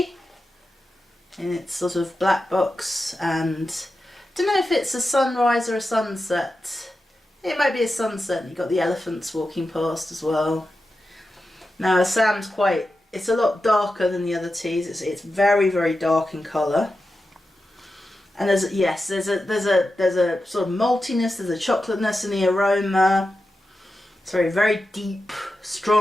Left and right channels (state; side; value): normal; both; correlation 0.91